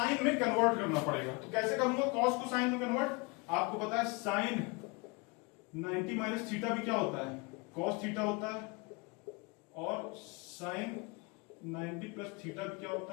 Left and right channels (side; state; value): right; quieter; 28.1 dB